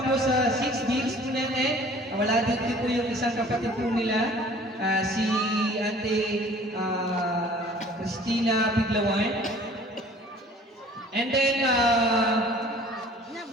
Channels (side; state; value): both; normal; correlation 0.50